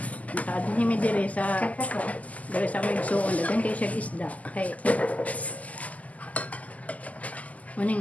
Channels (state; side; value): late; right; 0.074 ms